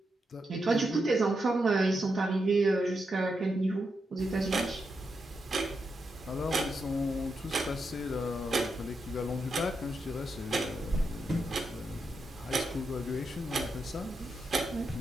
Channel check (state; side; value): normal; both; correlation 0.85